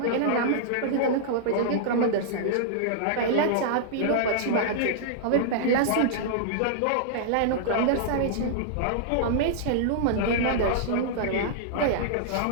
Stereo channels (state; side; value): different; both; correlation -0.02